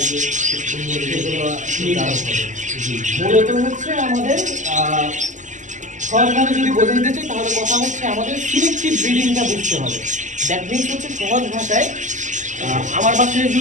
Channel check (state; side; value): late; left; 0.36 ms